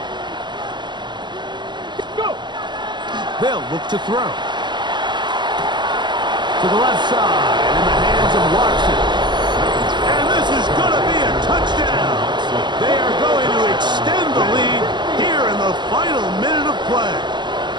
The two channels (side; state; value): left; late; 0.21 ms